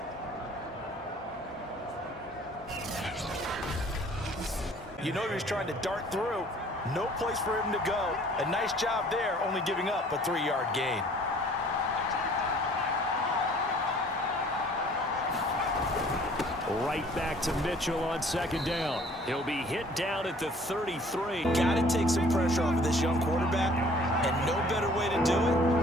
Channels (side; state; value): both; normal; correlation 0.54